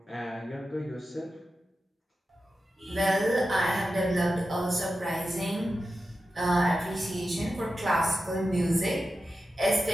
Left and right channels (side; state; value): both; normal; correlation 0.92